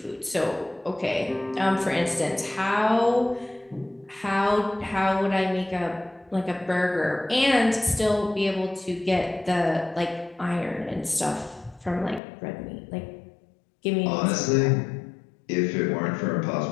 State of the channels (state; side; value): drops out; right; at 12.2 s